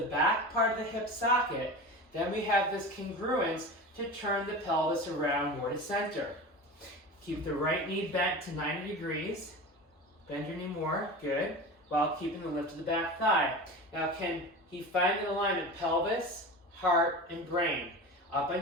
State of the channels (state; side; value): normal; both; correlation 0.30